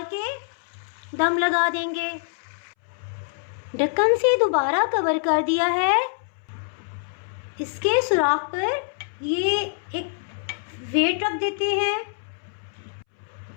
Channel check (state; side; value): silent; right; 62 dB below the other